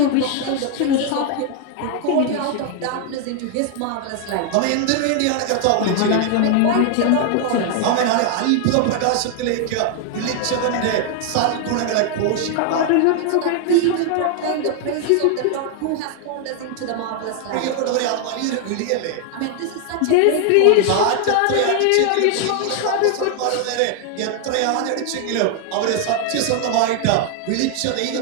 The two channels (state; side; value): different; both; correlation 0.00